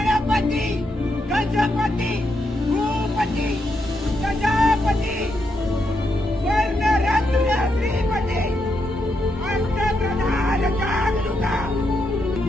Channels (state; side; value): normal; both; correlation 0.81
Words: गजपती भूपती प्रजापती स्वर्णरत्न श्रीपती अष्टप्रधान जागरूका